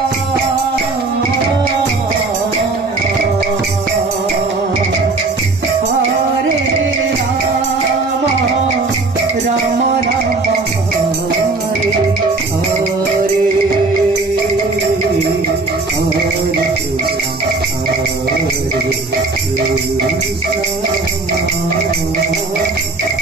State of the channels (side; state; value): left; quieter; 3.5 dB